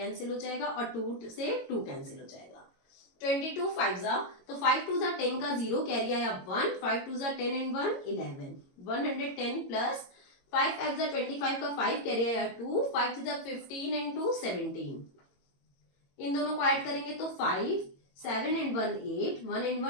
हो जाएगा और 2 से 2 कैंसिल हो जाएगा। 22 5 जा तो 5 2 जा 10 का 0 कैरी आया 1, 5 2 जा 10 एंड 1 11, 110 प्लस 5 5 जा 25 का 5 कैरी आया 2, 5 जा 15 एंड 2 17, इन दोनों को ऐड करेंगे तो 5 7 and 1 8, 1 and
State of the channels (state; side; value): late; right; 22 ms